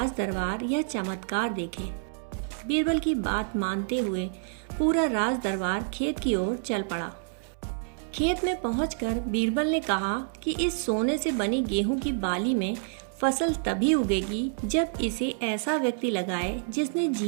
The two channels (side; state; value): left; silent; 59 dB below the other